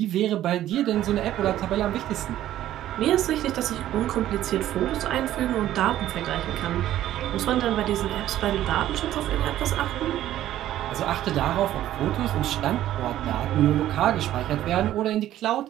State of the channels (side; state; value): left; quieter; 13.0 dB